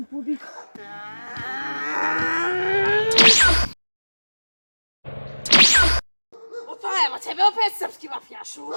pobjeg. Opa, evo tebe opet srpski mafijašu.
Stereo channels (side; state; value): both; inverted; correlation -1.00